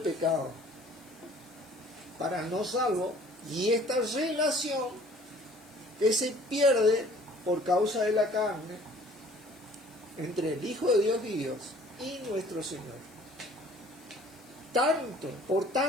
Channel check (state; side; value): noise; left; hiss, 26 dB below the sound